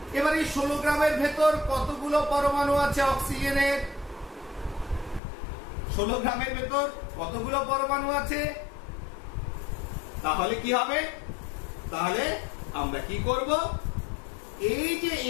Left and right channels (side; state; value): right; drops out; at 5.2 s